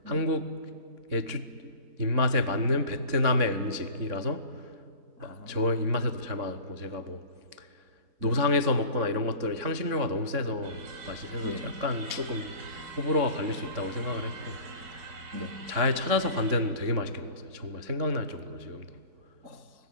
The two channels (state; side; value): late; left; 3.7 ms